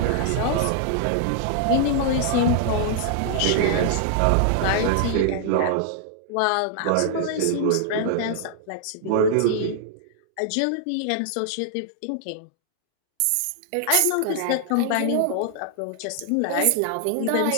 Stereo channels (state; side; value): different; both; correlation -0.01